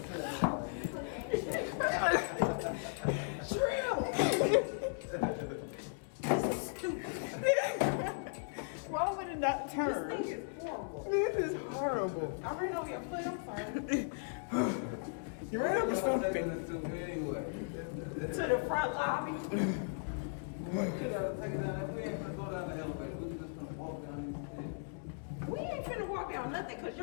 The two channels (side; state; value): right; silent; digital silence